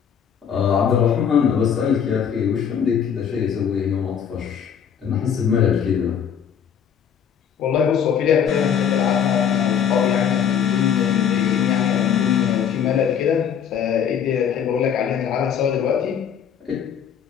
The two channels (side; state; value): right; quieter; 8.1 dB